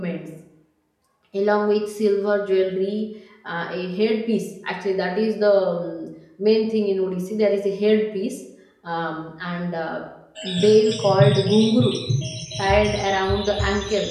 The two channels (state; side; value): identical; both; correlation 1.00